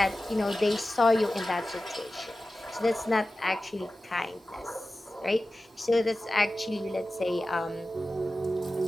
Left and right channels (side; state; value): both; normal; correlation 0.95